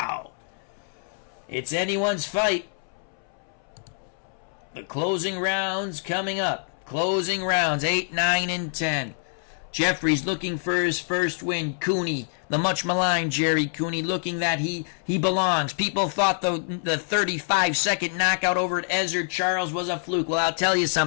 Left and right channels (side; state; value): right; silent; 61 dB below the other